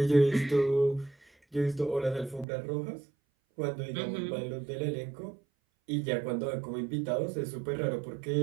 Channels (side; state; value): left; drops out; at 2.5 s